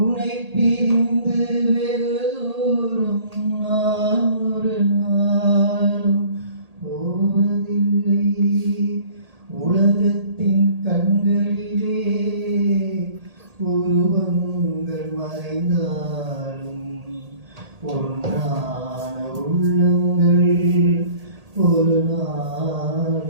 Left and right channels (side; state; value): left; late; 1.8 ms